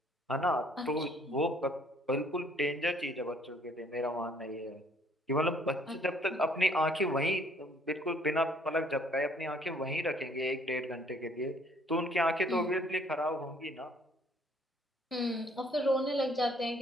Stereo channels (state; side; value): normal; both; correlation 0.61